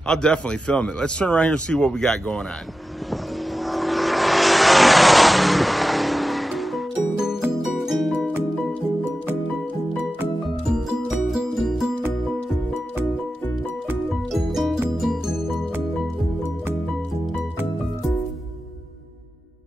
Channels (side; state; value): both; normal; correlation 0.93